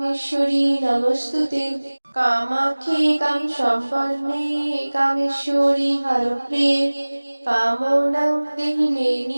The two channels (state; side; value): inverted; both; correlation -1.00